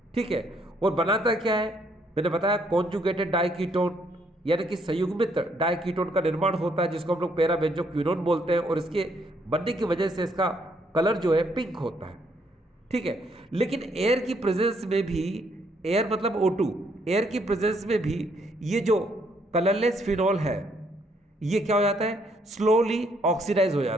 ठीक है। और बनाता क्या है? मैंने बताया कॉन्जुगेटेड डाइकीटोन, यानी कि संयुग्मित डाइकीटोन का निर्माण होता है, जिसको हम लोग पैराबेंजोक्विनोन बोलते हैं, और इसके बनने की वजह से इसका कलर जो है पिंक होता है, ठीक है। लेकिन एयर की प्रेजेंस में भी, एयर मतलब O2, एयर की प्रेजेंस में भी ये जो कलरलेस फिनॉल है ये क्या हो जाता है, स्लोली ऑक्सीडाइज हो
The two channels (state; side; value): normal; both; correlation 0.70